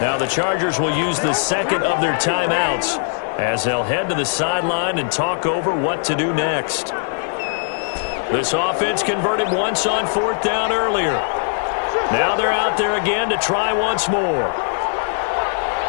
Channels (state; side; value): silent; right; digital silence